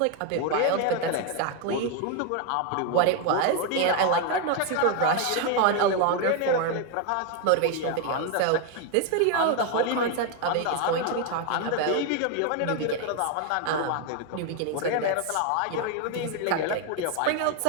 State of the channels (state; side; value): different; both; correlation 0.01